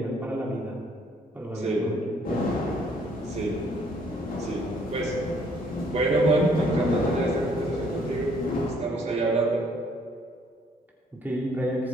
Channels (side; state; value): both; normal; correlation 0.64